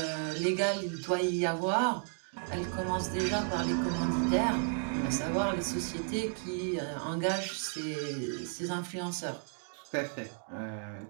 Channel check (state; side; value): silent; left; 56 dB below the other